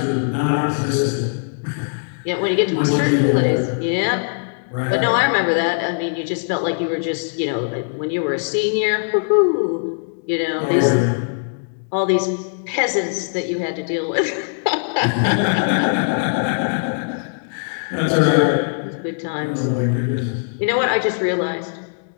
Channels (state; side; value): silent; right; digital silence